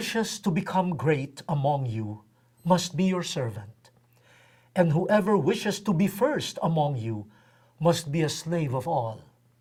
to become great among you must be your servant. And whoever wishes to be first among you must be a slave of all.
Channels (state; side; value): identical; both; correlation 1.00